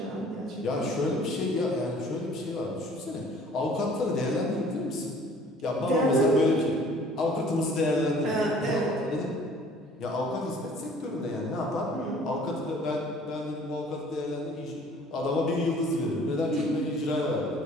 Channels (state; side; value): normal; both; correlation 0.53